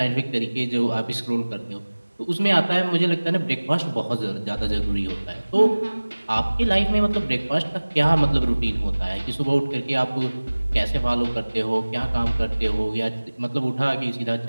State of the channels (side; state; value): both; inverted; correlation -1.00